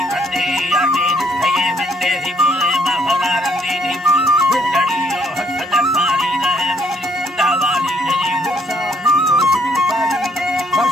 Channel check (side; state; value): both; normal; correlation 0.67